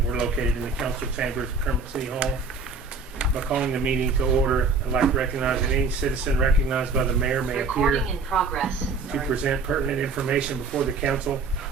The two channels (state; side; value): quieter; left; 4.2 dB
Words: we're located in the council chambers of Kermit City Hall. By calling the meeting to order, I'd like to recognize that any citizen recognized by the mayor may appear in progress. to present pertinent information before the council.